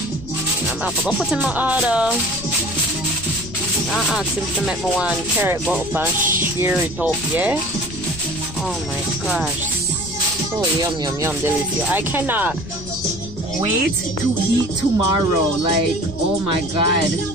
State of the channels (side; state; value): left; noise; rumble, 14 dB below the sound